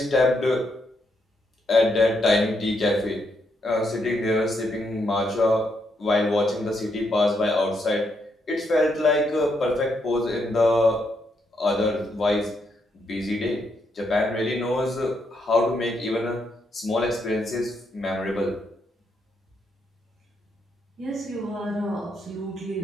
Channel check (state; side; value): normal; both; correlation 0.78